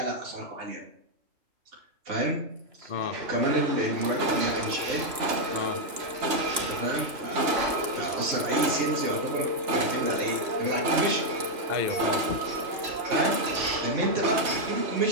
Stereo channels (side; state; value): left; late; 2.9 ms